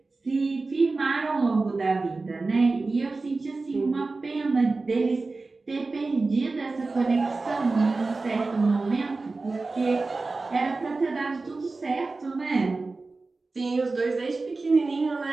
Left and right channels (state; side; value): quieter; left; 3.7 dB